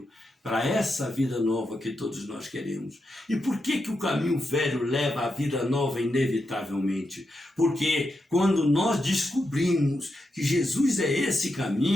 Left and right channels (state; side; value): normal; both; correlation 0.85